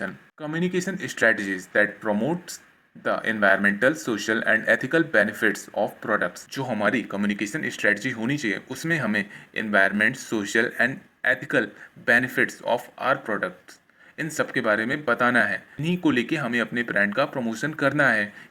Communication strategies that promotes the environmental, social and ethical benefits of products. जो हमारी कम्युनिकेशन स्ट्रेटजी होनी चाहिए उसमें हमें environment, social and ethical benefits of our products, इन सब के बारे में बताना है। इन्हीं को लेके हमें अपने ब्रांड का प्रमोशन करना है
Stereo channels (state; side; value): identical; both; correlation 1.00